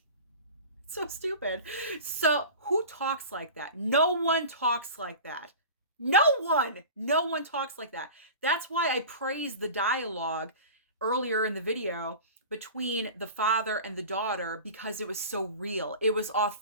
So stupid. So who talks like that? No one talks like that. No one talks like that. That's why I praised the dialogue earlier in the video between the father and the daughter, because it was so real. It was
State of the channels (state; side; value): inverted; both; correlation -0.36